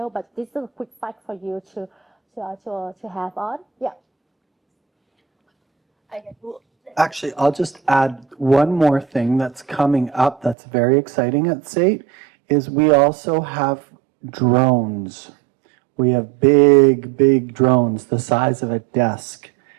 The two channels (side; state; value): left; drops out; at 10.6 s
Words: but this is a quick fact for you to have on. Yeah. Actually, I'll just add one more thing that's coming up that's very exciting at SAIT is we also have drones. We have big drones the size of a desk.